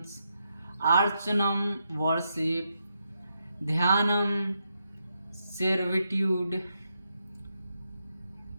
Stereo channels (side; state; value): both; inverted; correlation -0.82